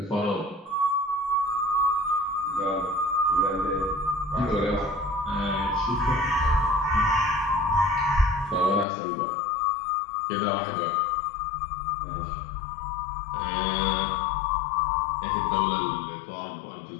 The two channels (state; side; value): drops out; right; at 8.8 s